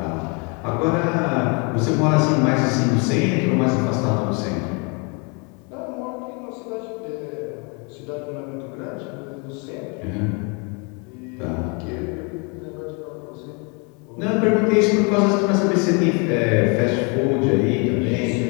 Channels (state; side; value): quieter; right; 33.1 dB